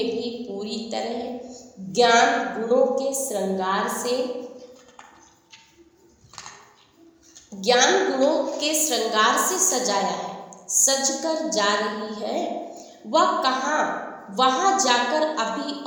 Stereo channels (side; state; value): both; identical; correlation 1.00